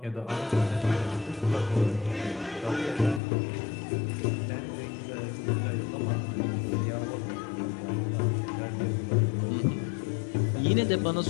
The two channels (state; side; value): drops out; right; at 3.2 s